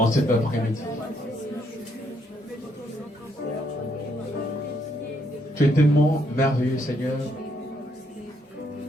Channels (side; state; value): both; normal; correlation 0.73